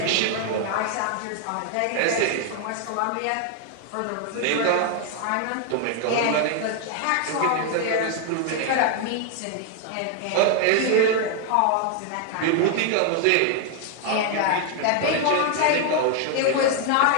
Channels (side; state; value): both; different; correlation 0.00